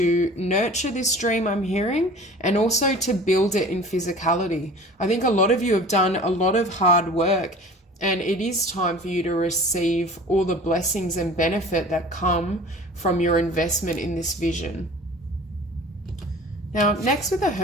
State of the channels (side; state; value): both; normal; correlation 0.43